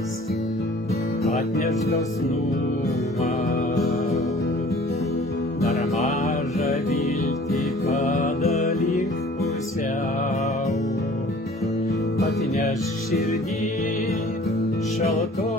atneš dosnumą, dar mažą viltį padalink pusiau, atneš širdį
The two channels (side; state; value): both; normal; correlation 0.50